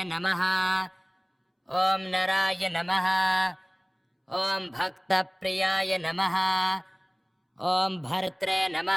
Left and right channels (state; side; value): identical; both; correlation 1.00